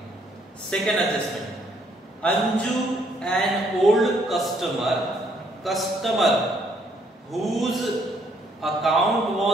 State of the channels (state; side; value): normal; both; correlation 0.68